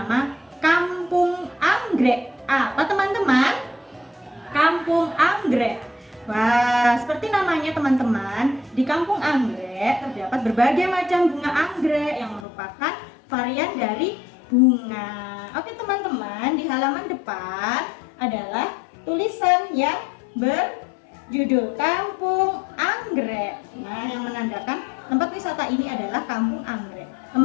Kampung Anggrek. Apa teman-teman? Kampung Anggrek. Wah, seperti namanya teman-teman, di Kampung Anggrek terdapat berbagai macam bunga anggrek yang merupakan varian dari bunga. Oke teman-teman, di halaman depan adalah tulisan yang berjudul Kampung Anggrek. Nah, yang menandakan tempat wisata ini adalah Kampung Anggrek.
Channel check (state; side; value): drops out; right; at 12.5 s